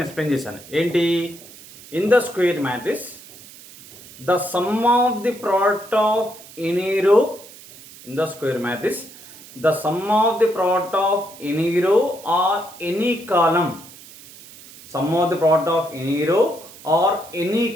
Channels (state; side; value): noise; right; hiss, 19 dB below the sound